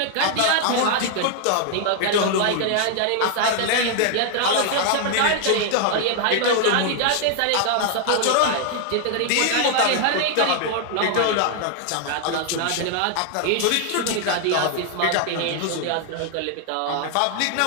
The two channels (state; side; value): different; both; correlation 0.00